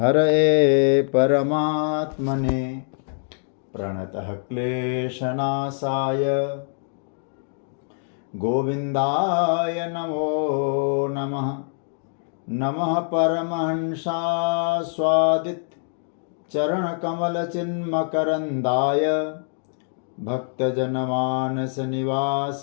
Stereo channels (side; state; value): right; silent; digital silence